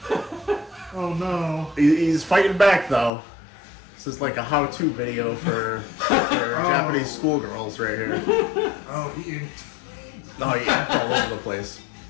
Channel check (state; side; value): drops out; right; at 3.1 s